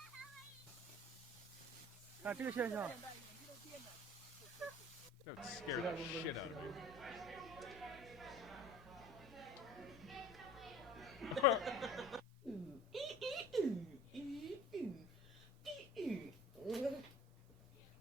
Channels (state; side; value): normal; both; correlation 0.44